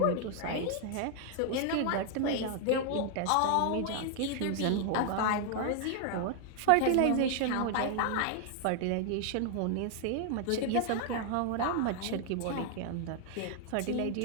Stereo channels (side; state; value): both; different; correlation 0.00